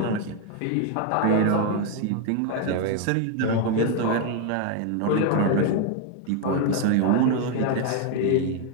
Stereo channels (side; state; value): both; different; correlation 0.01